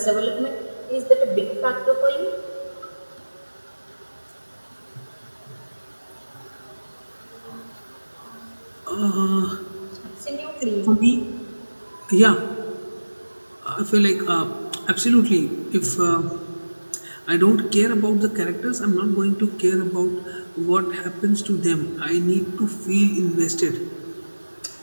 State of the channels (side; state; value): both; inverted; correlation -1.00